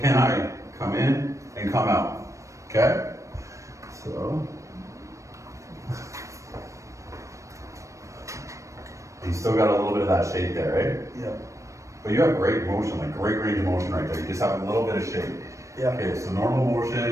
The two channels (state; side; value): late; left; 0.15 ms